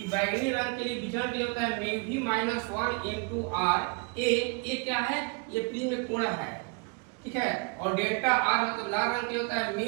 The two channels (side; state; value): left; quieter; 33.5 dB